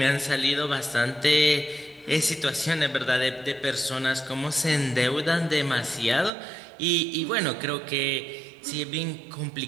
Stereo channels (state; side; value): drops out; left; at 6.3 s